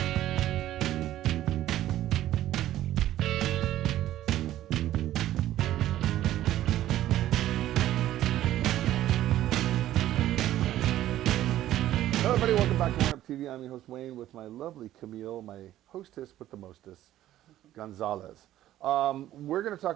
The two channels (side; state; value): left; quieter; 13.4 dB